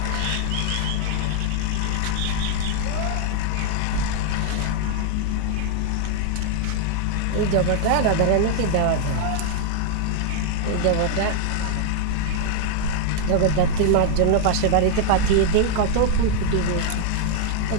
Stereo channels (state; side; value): different; both; correlation 0.00